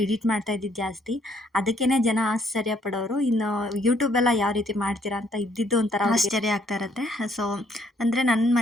ಎಡಿಟ್ ಮಾಡ್ತಾ ಇದ್ದಿದ್ದು ಜಾಸ್ತಿ. ಅದಕ್ಕೇ ಜನ ಆಶ್ಚರ್ಯ ಪಡೋರು. ಇನ್ನು ಯೂಟ್ಯೂಬೆಲ್ಲ ಯಾವ ರೀತಿ ಮಾಡ್ತೀರಾ ಅಂತ ಇದ್ದಿದ್ದು ಒಂಥರ ಆಶ್ಚರ್ಯ ಆಗ್ತಾ ಇರುತ್ತೆ. ಸೊ ಅಂದರೆ ನನ್ನ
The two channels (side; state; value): both; normal; correlation 0.67